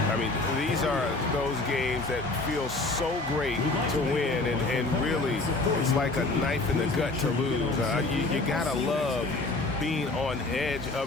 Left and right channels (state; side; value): quieter; right; 3.1 dB